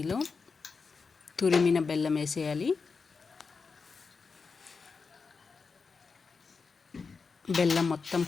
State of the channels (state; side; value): quieter; right; 4.9 dB